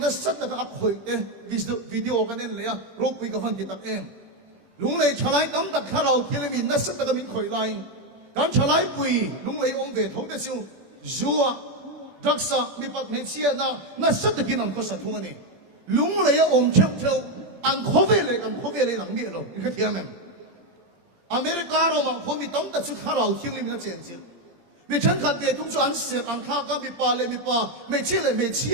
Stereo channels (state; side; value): late; left; 17 ms